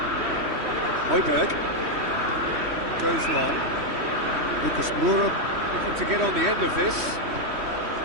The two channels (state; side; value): late; left; 3.1 ms